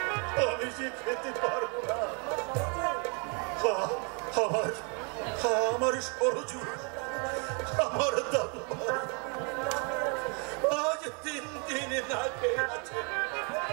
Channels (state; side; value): quieter; left; 36.0 dB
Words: আমি যে খেতে পারবো না। আমার সরজু, আমার দাদু আজ 3 দিন না খেয়ে আছে।